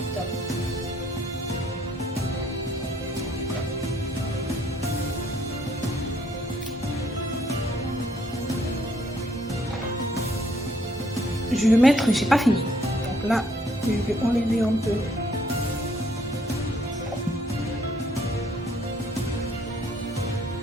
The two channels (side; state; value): both; normal; correlation 0.65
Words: je vais mettre, j'ai pas fini. Donc là, je vais enlever un peu.